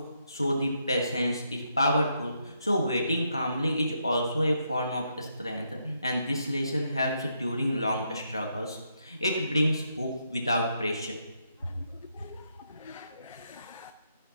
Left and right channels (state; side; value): inverted; both; correlation -0.78